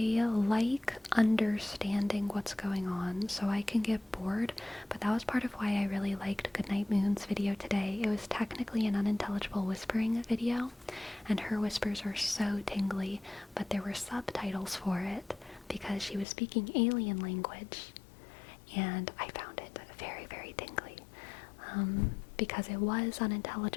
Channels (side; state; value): right; drops out; at 16.2 s